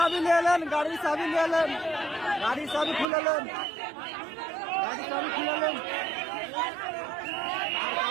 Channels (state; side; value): drops out; left; at 3.1 s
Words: নিয়ে এলেন, গাড়ির চাবি নিয়ে এলেন, গাড়ির চাবি খুলে নেন, গাড়ির চাবি খুলে নেন,